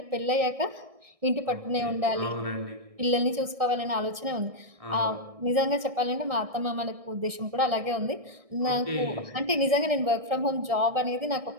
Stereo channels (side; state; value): left; late; 1.6 ms